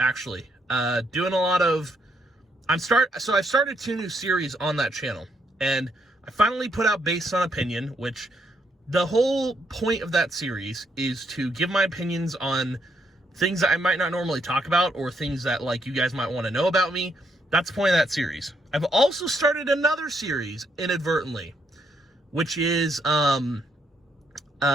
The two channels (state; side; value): normal; both; correlation 0.75